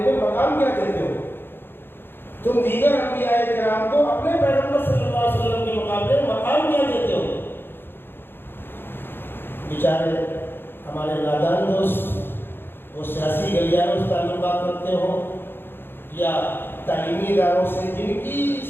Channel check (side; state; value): right; late; 0.10 ms